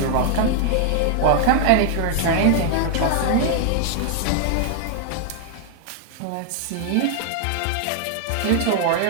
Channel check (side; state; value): both; different; correlation 0.00